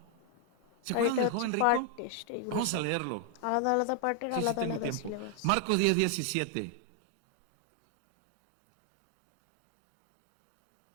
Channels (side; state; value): both; different; correlation 0.00